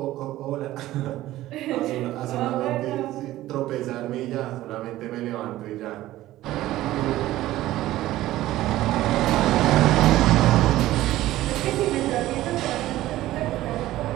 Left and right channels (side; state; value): left; quieter; 15.5 dB